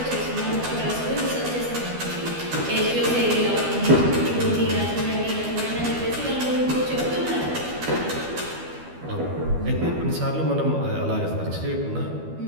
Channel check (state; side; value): late; left; 12 ms